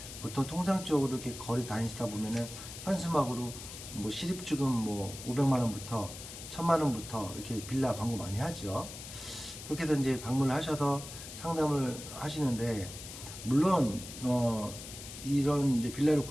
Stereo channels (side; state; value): left; noise; hiss, 12 dB below the sound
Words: 보통 통상적으로 이렇게 거리 다니시다 보면은 현수막으로 뭐 실입주금 뭐 500만 원부터 1000만 원부터 이렇게 빌라 광고 많이 하죠. 그렇게 해서 이제 방문을 하셔서 상담을 하시는데, 물론 이런 이제 빌라를